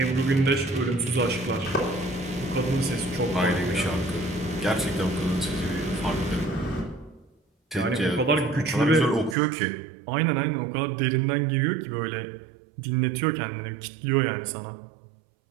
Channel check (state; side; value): drops out; left; at 9.3 s